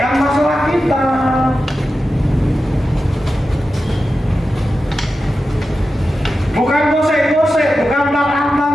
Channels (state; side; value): normal; both; correlation 0.92